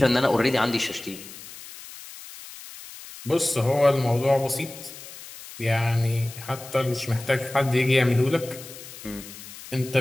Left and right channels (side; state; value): left; noise; hiss, 15 dB below the sound